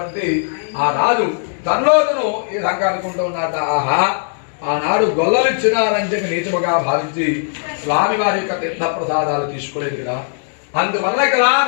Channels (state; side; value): silent; right; digital silence